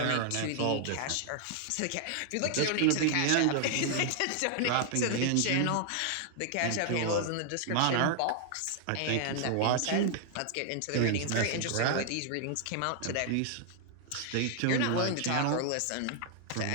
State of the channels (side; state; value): both; different; correlation 0.00